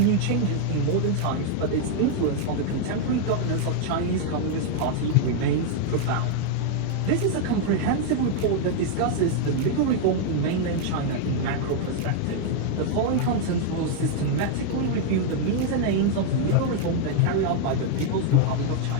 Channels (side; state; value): both; different; correlation 0.00